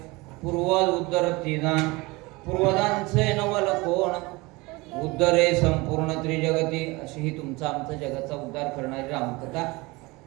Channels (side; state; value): left; quieter; 23.6 dB